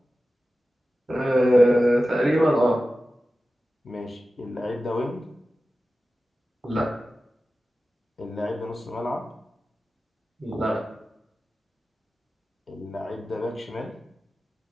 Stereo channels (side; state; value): both; normal; correlation 0.94